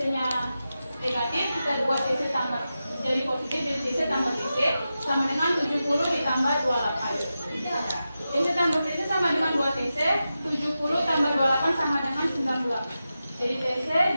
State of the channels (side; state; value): both; inverted; correlation -0.91